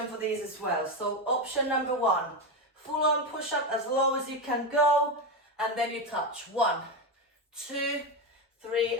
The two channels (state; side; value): normal; both; correlation 0.13